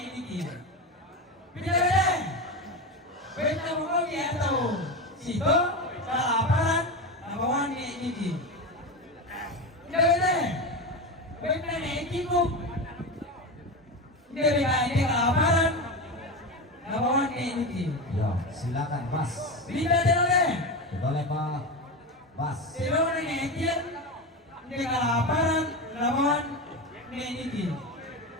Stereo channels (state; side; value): normal; both; correlation 0.19